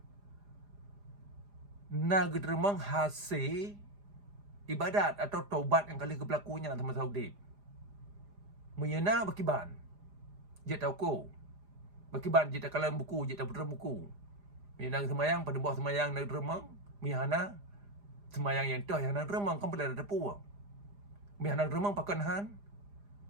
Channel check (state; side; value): late; left; 4.9 ms